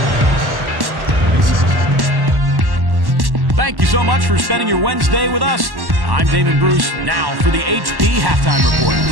36. Thank you so much for spending your Wednesday with us. I'm Damon Bruce. Now for the HP Halftime Report.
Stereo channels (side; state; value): left; late; 1.1 ms